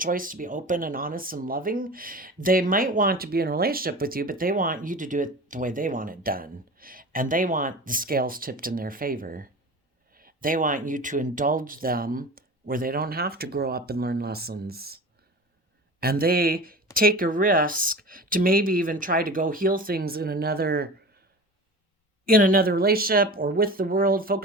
to be open and honest and loving, they might want to be in a relationship with you, but they want you to do it the way they want it done. And they want the scales tipped in their favor. They want you to indulge them where they don't have to grow up and learn lessons. And they take a risk to maybe even try to go heal things in another relationship or with the world,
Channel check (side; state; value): both; normal; correlation 0.34